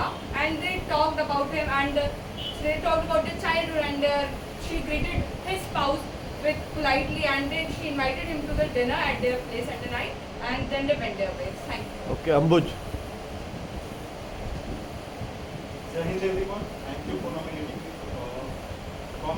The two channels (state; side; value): identical; both; correlation 1.00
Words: and they talked about him and they talked about their childhood, and she greeted his spouse with politely, and then she invited him to the dinner at their place at the night, and then they went their ways. Thank you. Okay, Ambuj. Jai Hind everyone, thank you for nominating me. From